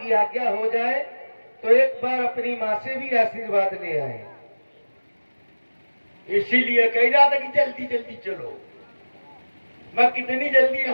आज्ञा हो जाए तो एक बार अपनी माँ से भी आशीर्वाद ले आए। इसीलिए कह रहा था कि जल्दी जल्दी चलो। मैं कितनी जल्दी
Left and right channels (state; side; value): inverted; both; correlation -1.00